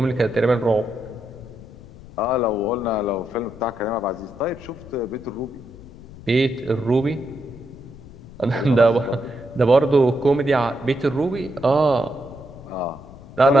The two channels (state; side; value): noise; left; rumble, 18 dB below the sound